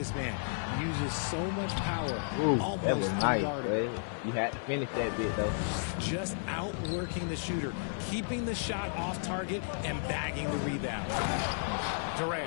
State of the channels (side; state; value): right; silent; digital silence